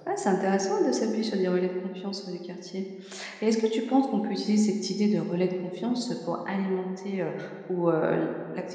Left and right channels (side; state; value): both; identical; correlation 1.00